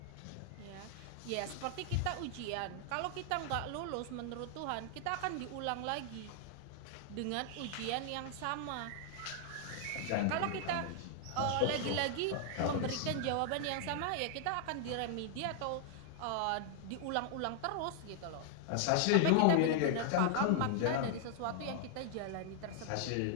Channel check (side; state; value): both; different; correlation 0.00